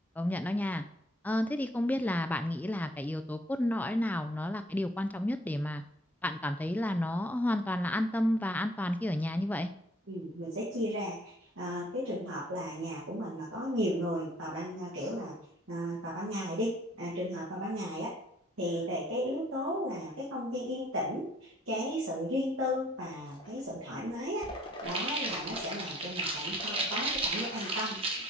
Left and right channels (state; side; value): normal; both; correlation 0.62